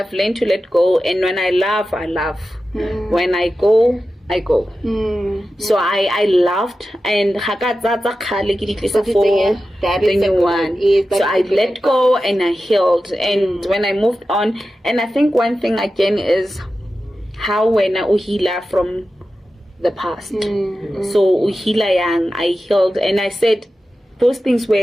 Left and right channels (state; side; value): normal; both; correlation 0.93